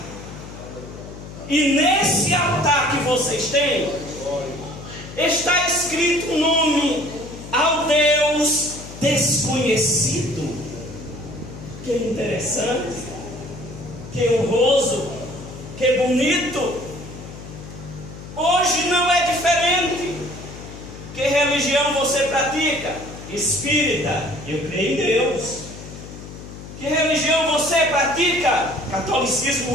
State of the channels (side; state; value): left; noise; hum, 14 dB below the sound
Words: E nesse altar que vocês têm, está escrito um nome: ao Deus desconhecido. Que interessante, que honroso, que bonito. Hoje não é diferente. Que religião você pratica? Espírita, eu creio em Deus. Que religião você pratica? Catolicismo